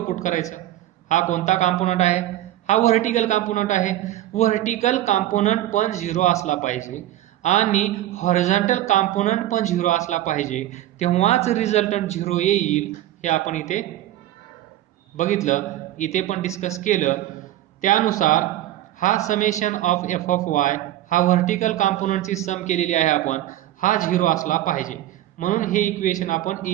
put करायचा. हा कोणता कॉम्पोनंट आहे? हा व्हर्टिकल कॉम्पोनंट आहे. व्हर्टिकल कॉम्पोनंट पण 0 असला पाहिजे आणि हॉरिझॉन्टल कॉम्पोनंट पण 0 असला पाहिजे, तेव्हाच रिझल्टंट 0 येईल. हे आपण इथे बघितलं, इथे पण डिस्कस केलं. त्यानुसार हा summation of F of Y हा व्हर्टिकल कॉम्पोनंटची सम केलेली आहे आपण, हा 0 असला पाहिजे. म्हणून हे इक्वेशन आपण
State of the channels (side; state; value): left; quieter; 14.1 dB